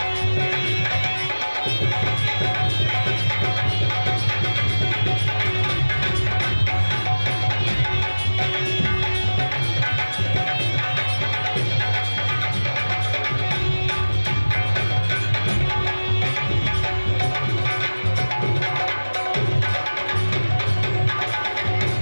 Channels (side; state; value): both; inverted; correlation -1.00